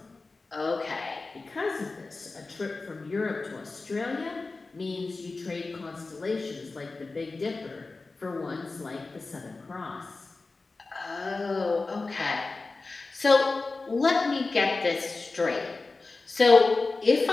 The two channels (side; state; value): right; quieter; 3.7 dB